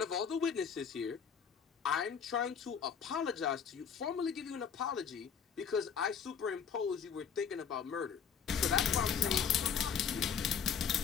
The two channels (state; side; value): quieter; right; 7.2 dB